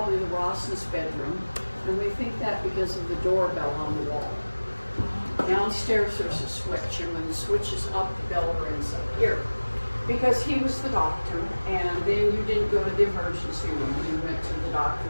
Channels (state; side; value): inverted; both; correlation -1.00